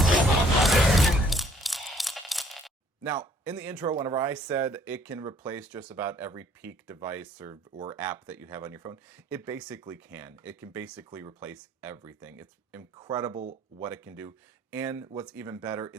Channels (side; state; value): both; normal; correlation 0.60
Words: Now, in the intro, whenever I said it can replace just about every peak device or app that you have on your phone, it basically can. It can basically replace everything. It's incredible what it can do. And what's even better,